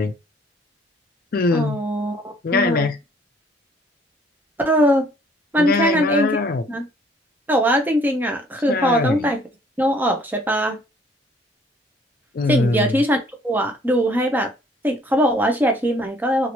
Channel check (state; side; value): normal; both; correlation 0.60